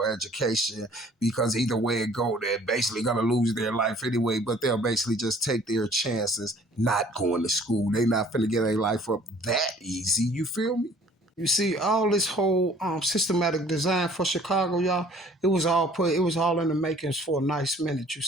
education because either way it go, they're basically gonna lose their life anyway. But they'll basically just take their chances not going to school. They not finna get their life up that easy. You feel me? You see, all this whole systematic design for Chicago, y'all, it was all in the makings for a nice minute. You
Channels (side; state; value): both; normal; correlation 0.54